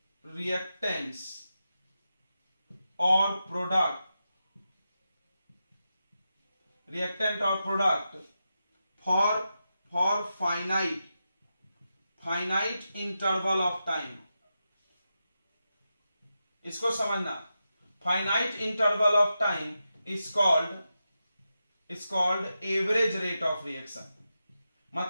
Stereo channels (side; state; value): both; inverted; correlation -0.89